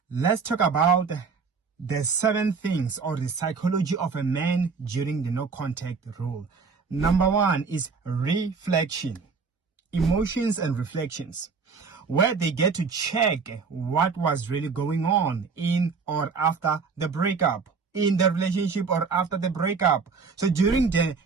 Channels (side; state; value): left; quieter; 5.1 dB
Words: Let's talk about the 7 things or the psychology of a man during the no contact rule. Number 1 is reflection, emotions and reflections, where they get to check what was really going on in or after the breakup, in the relationship or after the breakup. So during the